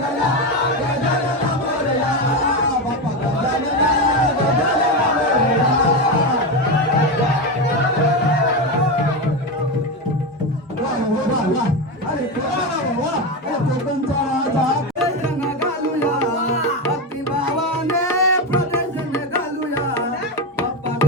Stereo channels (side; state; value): both; normal; correlation 0.14